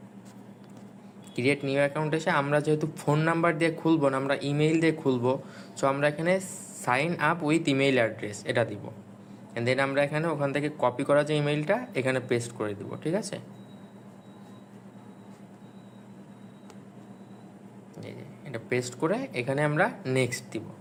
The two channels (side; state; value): both; identical; correlation 1.00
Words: create new account এসে আমরা যেহেতু ফোন নাম্বার দিয়ে খুলবো না, আমরা ইমেইল দিয়ে খুলবো, সো আমরা এখানে sign up with email address এটা দিব। অ্যান্ড দেন আমরা এখানে ওখান থেকে কপি করা যে ইমেইলটা এখানে পেস্ট করে দিব, ঠিক আছে। এটা পেস্ট করে এখানে আমরা নেক্সট দিব।